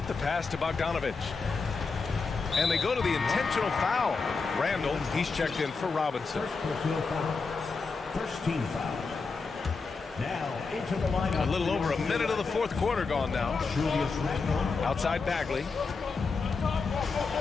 the pass to Bogdanovic. And they go to the intentional foul. Randall, he's checked in for Robinson. First team foul. Now into the lineup. A little over a minute of the fourth quarter gone now. Outside Bagley.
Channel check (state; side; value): quieter; right; 4.5 dB